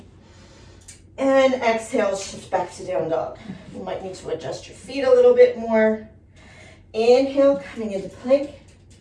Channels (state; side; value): identical; both; correlation 1.00